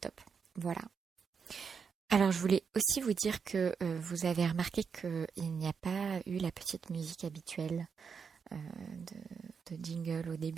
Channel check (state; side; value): quieter; left; 6.0 dB